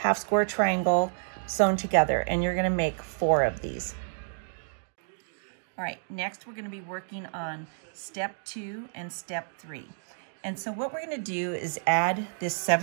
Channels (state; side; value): silent; left; digital silence